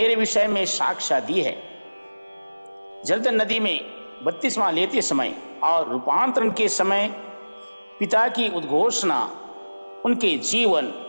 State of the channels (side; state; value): both; inverted; correlation -1.00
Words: विषय में साक्ष्य दी है। जर्दन नदी में बपतिस्मा लेते समय और रूपांतरण के समय पिता की उद्घोषणा उनके जीवन,